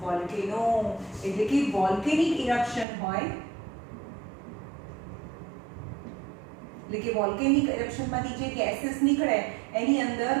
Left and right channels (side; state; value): left; drops out; at 2.9 s